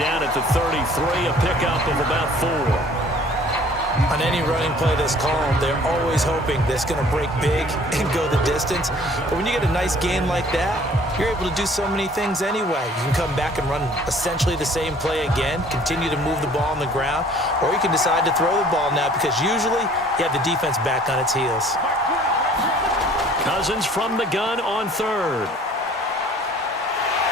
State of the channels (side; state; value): both; normal; correlation 0.53